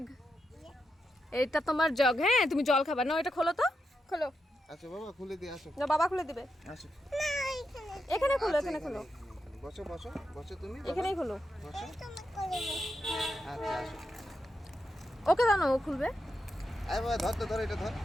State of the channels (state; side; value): normal; both; correlation 0.85